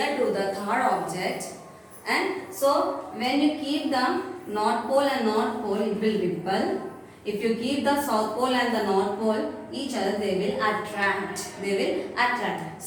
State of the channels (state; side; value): identical; both; correlation 1.00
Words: to the third object, and so when you keep the north pole and north pole, it will repel. If you keep the south pole and the north pole each other, they will attract. They will attract.